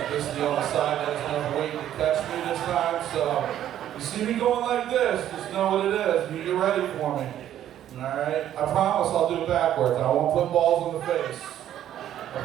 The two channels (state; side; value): quieter; left; 11.4 dB